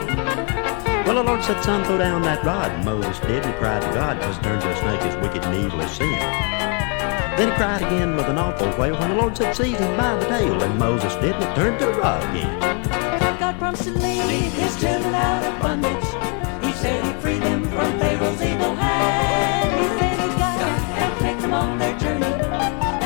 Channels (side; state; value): right; quieter; 37.5 dB